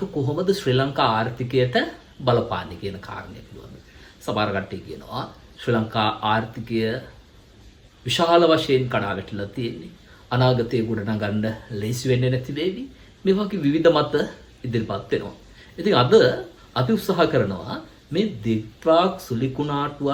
කොහොමද ශ්‍රී ලංකා ආර්ථිකයට බලපාන්නේ කියන කාරණය පිළිබඳව. සමහර කට්ටිය කියනවා ශ්‍රී ලංකා ආර්ථිකය විශාල වශයෙන් කඩා වැටිලා තියෙන්නේ. අනාගතයේ ගොඩනගන්න ලේසි වෙන්නේ නැති වේවි. මේ වගේ විවිධ මත ඉදිරිපත් වෙනවා. ඉතින් අද අපි උත්සාහ කරනවා මේ දිට්වාක්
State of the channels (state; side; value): identical; both; correlation 1.00